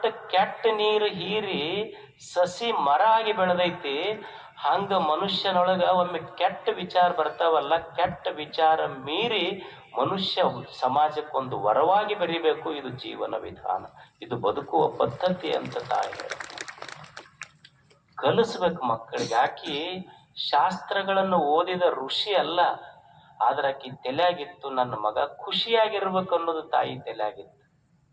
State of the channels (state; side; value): identical; both; correlation 1.00